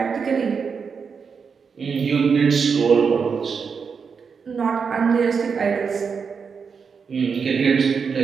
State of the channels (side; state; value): left; quieter; 5.9 dB